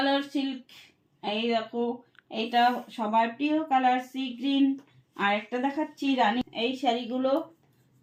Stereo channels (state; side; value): identical; both; correlation 1.00